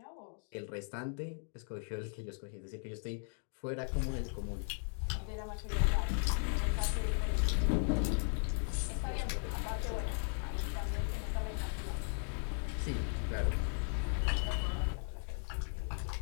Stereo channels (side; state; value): right; silent; 53 dB below the other